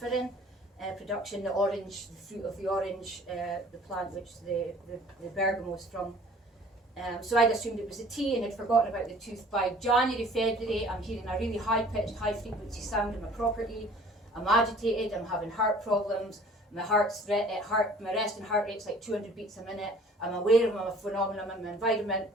production. The orange, the fruit of the orange, the plant which the bergamot is from. So I'd assumed it was a tea and had forgotten about the tooth. By January, February, I'm hearing a really high-pitched, high-frequency sound in my property. I'm agitated, I'm having heart problems, my resting heart rate's like 200 beats a minute. I'm aware of my phenomenon in my environment.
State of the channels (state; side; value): normal; both; correlation 0.51